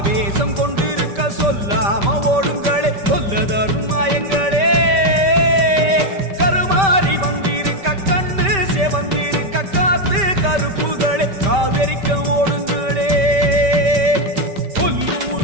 கொண்டிருக்க சொல்லாம ஓடுங்களே சொல்ல தரும் மாயங்களே கருமாறி வந்திருக்க கண்ணு செவந்திருக்க காத்து கருப்புகளே காவிரிக்க ஓடுங்களே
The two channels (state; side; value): late; left; 5.1 ms